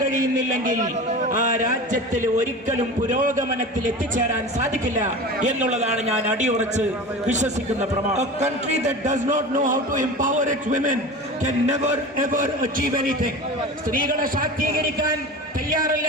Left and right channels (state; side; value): normal; both; correlation 0.32